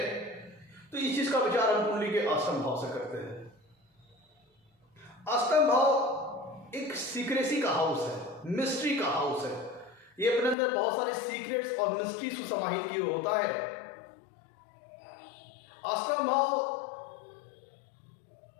तो इस चीज का विचार हम कुंडली के अष्टम भाव से करते हैं। अष्टम भाव एक सीक्रेसी का हाउस है, मिस्ट्री का हाउस है। ये अपने अंदर बहुत सारे सीक्रेट्स और मिस्ट्रीज को समाहित किए होता है। अष्टम भाव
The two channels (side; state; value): right; drops out; at 10.6 s